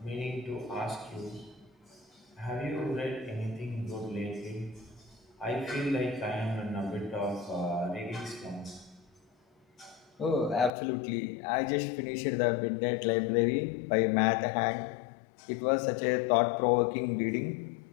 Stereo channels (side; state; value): right; drops out; at 10.7 s